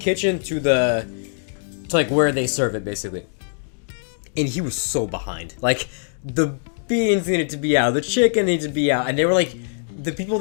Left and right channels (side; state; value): right; silent; digital silence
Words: to like, where they serve it, basically. And he was so behind. Like, the beans needed to be out, the chicken needed to be out, and they were, like, the people